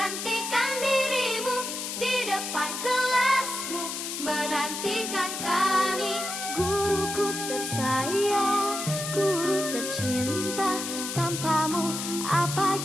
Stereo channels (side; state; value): left; noise; hiss, 5 dB below the sound